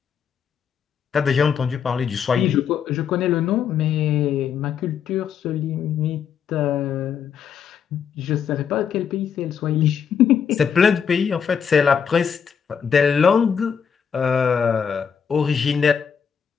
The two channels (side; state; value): right; quieter; 7.3 dB